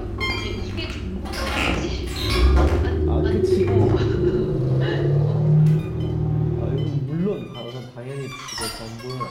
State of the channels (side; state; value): both; identical; correlation 1.00